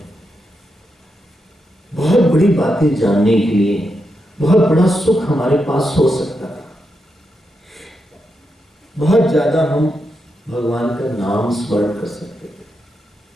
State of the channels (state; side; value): normal; both; correlation 0.85